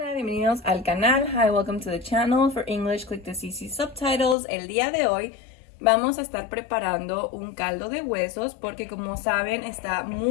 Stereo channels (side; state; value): right; drops out; at 4.4 s